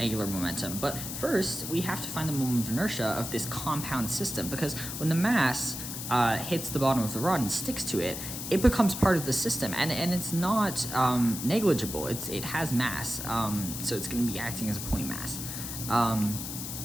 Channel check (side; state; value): left; noise; hiss, 7 dB below the sound